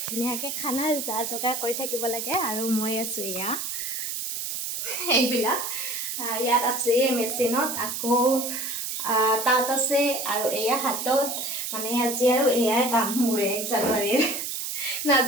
ধুনীয়াকৈ খানাৰ যা যোগাৰ কৰি থাকিব লাগে আৰু মই আছোঁ এয়া এইবিলাক ইয়াত আছে মেচিনত আকৌ তাত আছে আৰু এয়া হাতত মানে আজি আৰু এয়াই কাম মোৰ 1 জানুৱাৰীৰ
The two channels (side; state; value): right; noise; hiss, 4 dB below the sound